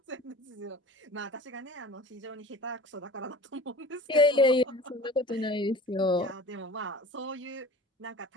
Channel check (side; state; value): both; normal; correlation 0.41